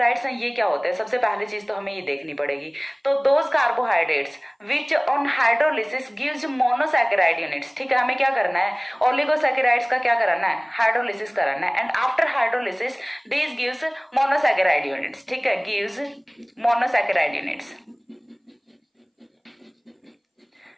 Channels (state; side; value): identical; both; correlation 1.00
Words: हैं ये क्या होते हैं? सबसे पहली चीज तो हमें ये देखनी पड़ेगी। तो those carbohydrates which on hydrolysis gives monosaccharide units. ठीक है, हमें क्या करना है? ओलिगोसैकेराइड्स का क्या कराना है? हाइड्रोलिसिस कराना है। And after hydrolysis this gives monosaccharide units. ठीक है, gives monosaccharide units,